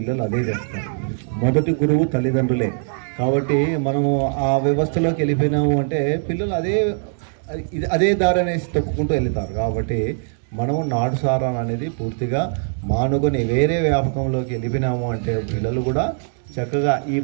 అదే చేస్తారు. మొదటి గురువు తల్లిదండ్రులే. కాబట్టి మనము ఆ వ్యవస్థలోకి వెళ్ళిపోయినాము అంటే పిల్లలు అదే దారి అనేసి తొక్కుకుంటూ వెళ్తారు. కాబట్టి మనము నాటుసారా అనేది పూర్తిగా మానుకొని వేరే వ్యాపకంలోకి వెళ్ళిపోయినాము అంటే పిల్లలు కూడా చక్కగా ఈ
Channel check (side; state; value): left; silent; digital silence